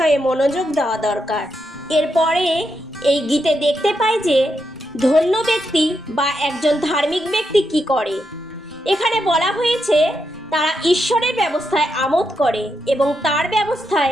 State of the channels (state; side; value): normal; both; correlation 0.83